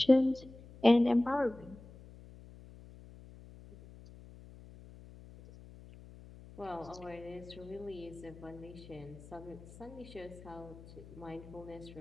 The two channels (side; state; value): left; noise; hum, 18 dB below the sound